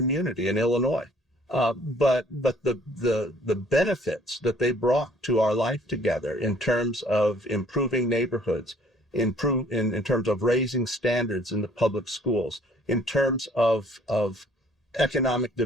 in Illinois, but the benefits that they brought to our life together in terms of improving neighborhoods, in terms of raising standards in the public schools, in terms of economic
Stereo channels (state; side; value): normal; both; correlation 0.58